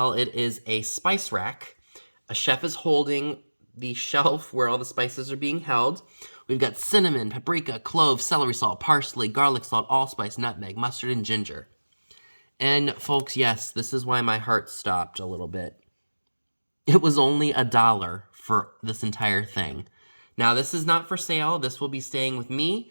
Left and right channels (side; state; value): both; inverted; correlation -1.00